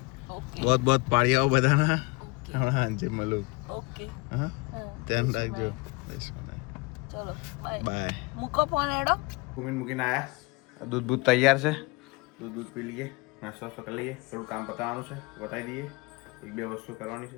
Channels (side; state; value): right; quieter; 26.0 dB